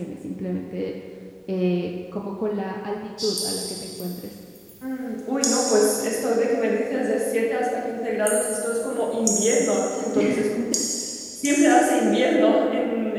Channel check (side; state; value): both; identical; correlation 1.00